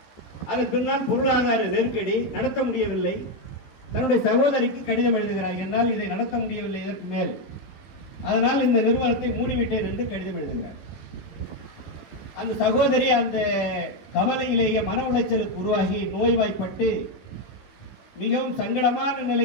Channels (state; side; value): late; right; 16 ms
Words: அதன் பின்னால் பொருளாதார நெருக்கடி, நடத்த முடியவில்லை. தன்னுடைய சகோதரிக்கு கடிதம் எழுதுகிறார், என்னால் இதை நடத்த முடியவில்லை இதற்கு மேல், அதனால் இந்த நிறுவனத்தை மூடிவிட்டேன் என்று கடிதம் எழுதுகிறார். அந்த சகோதரி அந்த கவலையிலேயே மன உளைச்சலுக்கு உருவாகி நோய்வாய்ப்பட்டு மிகவும் சங்கடமான